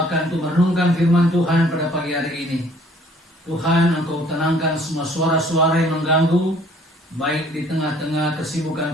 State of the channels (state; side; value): normal; both; correlation 0.58